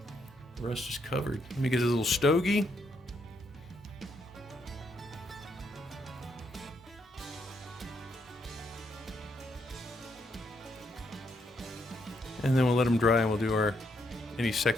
the rest is covered. Let me get a little stogie. And then we'll let them dry, and we'll do any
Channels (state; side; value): normal; both; correlation 0.76